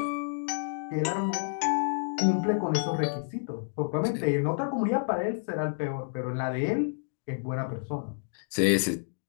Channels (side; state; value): right; silent; digital silence